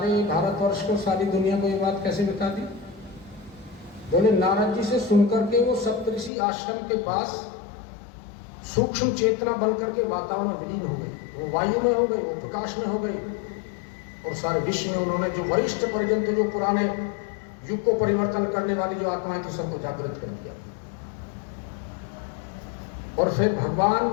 भारतवर्ष को, सारी दुनिया को ये बात कैसे बता दी? बोले नारद जी से सुनकर के वो सप्तऋषि आश्रम के पास सूक्ष्म चेतना बनकर के वातावरण में विलीन हो गई। वो वायु में हो गई, वो प्रकाश में हो गई और सारे विश्व में उन्होंने जो वरिष्ठ परिजन थे, जो पुराने युग को परिवर्तन करने वाली जो आत्माएं थी, सबको जागृत कर दिया। और फिर भगवान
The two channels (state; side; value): drops out; right; at 6.3 s